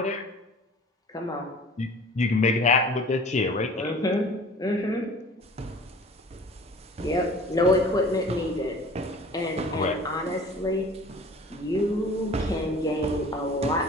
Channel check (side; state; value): both; normal; correlation 0.45